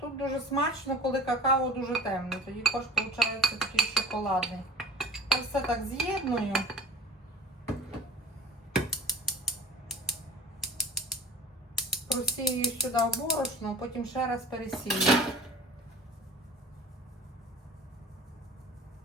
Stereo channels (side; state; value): both; normal; correlation 0.41